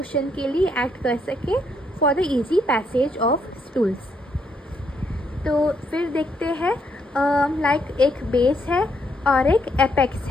के लिए एक्ट कर सके for the easy passage of stools. तो फिर देखते हैं लाइक एक बेस है और एक एपेक्स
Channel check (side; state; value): both; normal; correlation 0.74